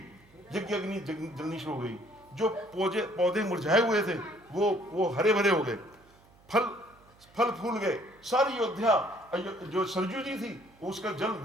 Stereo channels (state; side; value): noise; right; hum, 29 dB below the sound